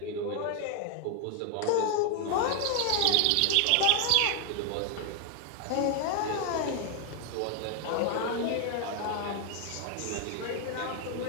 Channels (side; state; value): both; different; correlation 0.00